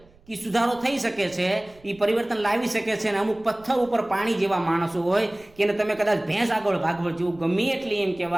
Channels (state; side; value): noise; right; rumble, 27 dB below the sound